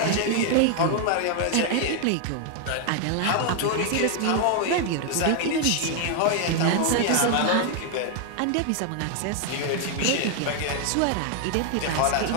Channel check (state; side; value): different; both; correlation 0.00